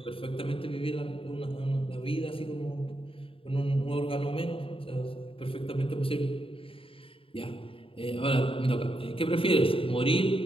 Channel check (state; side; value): late; right; 0.26 ms